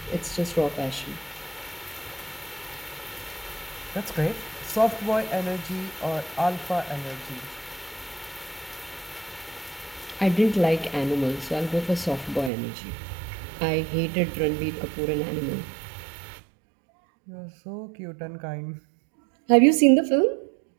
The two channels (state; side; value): drops out; left; at 12.5 s